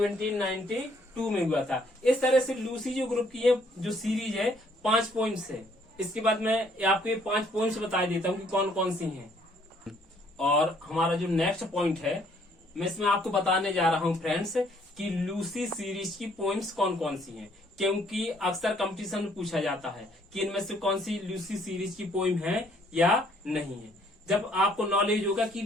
में हुआ था। इस तरह से लूसी जो ग्रुप की है जो सीरीज है 5 पॉइंट्स है। इसके बाद मैं आपको ये 5 पॉइंट्स बता देता हूँ कि कौन कौन सी हैं। और हमारा जो नेक्स्ट पॉइंट है, मैं इसमें आपको बताने जा रहा हूँ फ्रेंड्स कि लूसी सीरीज की पॉइंट्स कौन कौन सी हैं, क्योंकि अक्सर कंपटीशन में पूछा जाता है कि इनमें से कौन सी लूसी सीरीज की पोइम है या नहीं है। जब आपको नॉलेज होगा कि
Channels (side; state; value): both; normal; correlation 0.64